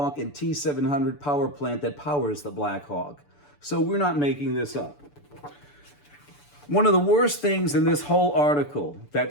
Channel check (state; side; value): late; right; 6.9 ms